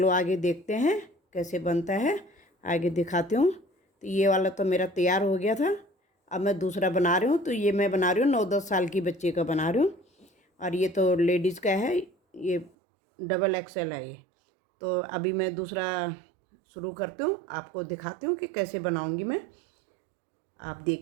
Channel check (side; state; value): left; drops out; at 12.7 s